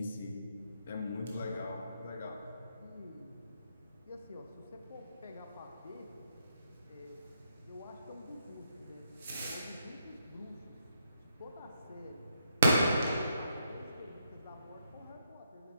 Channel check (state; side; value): inverted; both; correlation -0.77